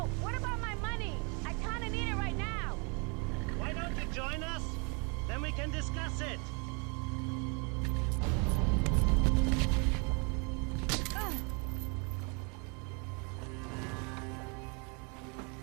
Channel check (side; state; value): left; quieter; 33.8 dB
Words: what about my money? I kinda need it right now. Why don't you join us? Then we can discuss it.